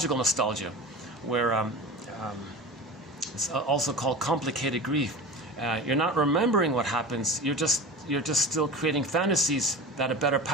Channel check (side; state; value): both; normal; correlation 0.31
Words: nostalgia, where it's also called complicated grief. You're not remembering what happens. You're just still creating fantasies that a better